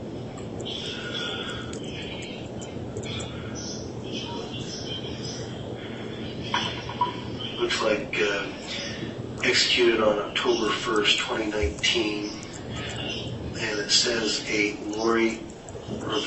Looks like executed on October 1st, 2019. And it says a Lori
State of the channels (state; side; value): identical; both; correlation 1.00